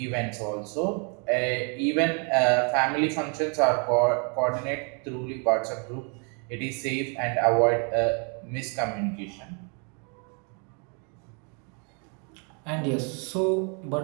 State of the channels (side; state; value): left; quieter; 37.4 dB